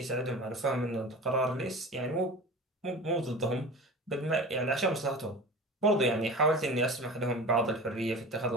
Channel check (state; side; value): normal; both; correlation 0.35